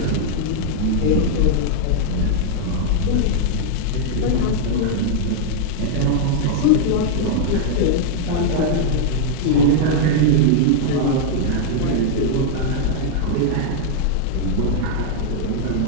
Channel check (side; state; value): both; different; correlation -0.01